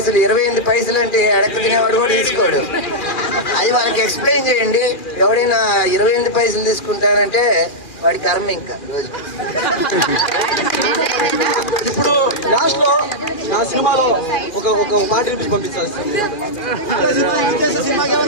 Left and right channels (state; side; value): late; right; 2.4 ms